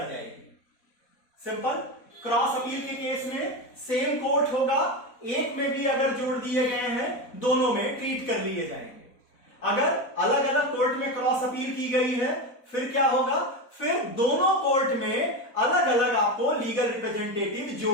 जाएगी। सिंपल। क्रॉस अपील के केस में सेम कोर्ट होगा, एक में भी अगर जोड़ दिए गए हैं दोनों में ट्रीट कर लिए जाएंगे। अगर अलग अलग कोर्ट में क्रॉस अपील की गई है फिर क्या होगा, फिर दोनों कोर्ट में अलग अलग आपको लीगल रिप्रेजेंटेटिव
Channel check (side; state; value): right; late; 4.1 ms